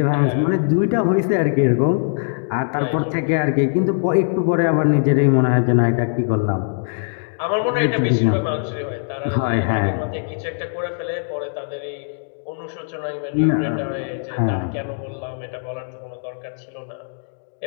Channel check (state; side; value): silent; right; digital silence